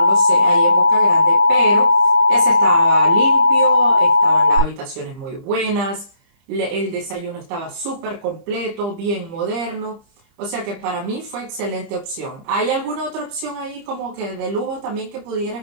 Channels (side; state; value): left; late; 30 ms